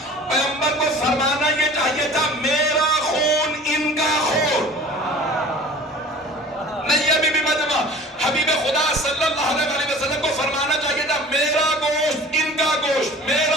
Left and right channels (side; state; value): both; normal; correlation 0.43